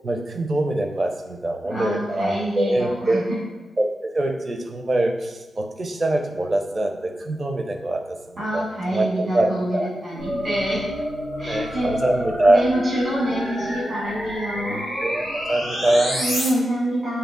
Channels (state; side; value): normal; both; correlation 0.91